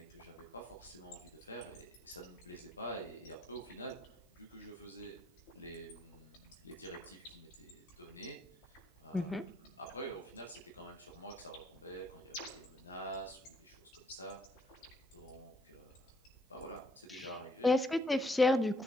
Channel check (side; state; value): both; normal; correlation 0.69